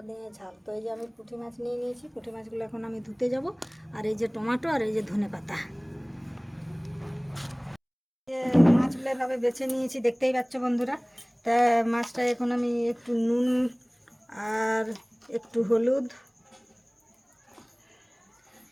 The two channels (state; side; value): identical; both; correlation 1.00